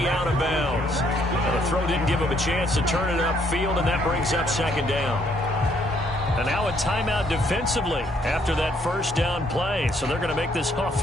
out of bounds. And the throw didn't give him a chance to turn it upfield, and that brings up 2nd down. And now a timeout defensively after that 1st down play. So they're going to make this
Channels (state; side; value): normal; both; correlation 0.68